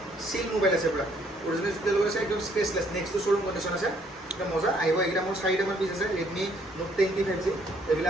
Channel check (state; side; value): normal; both; correlation 0.65